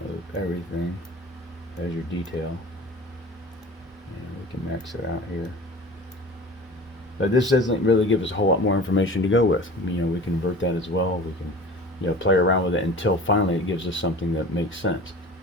of everything. There's your detail. And we can max it out here. But this doesn't really give us a whole lot more information to go with. You know, we can invert that as well. We can, you know, play around with it until finally it gives us something that makes sense.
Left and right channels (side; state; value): both; normal; correlation 0.39